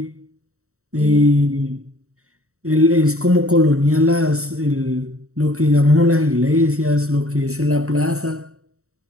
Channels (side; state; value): left; late; 0.64 ms